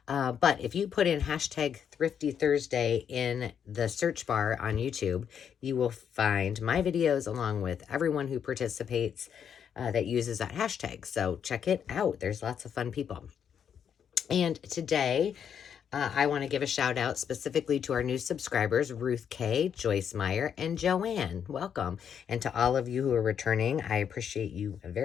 But if you put in hashtag Thrifty Thursday in the search bar on YouTube, you will find my videos along with everyone who participates that uses that hashtag. So check it out. There's lots of fun people. And today, I want to give a shout out specifically to our new subscribers, Ruth K, Joyce Meyer, and Joanne. Welcome. And to all of you who are returning, I appreciate you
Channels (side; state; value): right; quieter; 8.0 dB